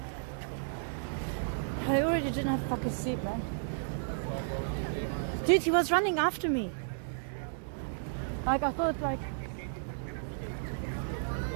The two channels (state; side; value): silent; left; digital silence